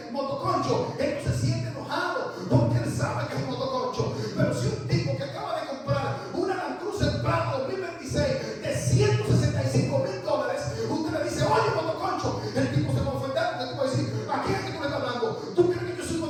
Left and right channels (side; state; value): both; identical; correlation 1.00